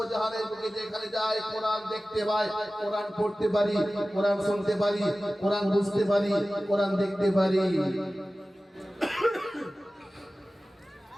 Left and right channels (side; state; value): both; normal; correlation 0.96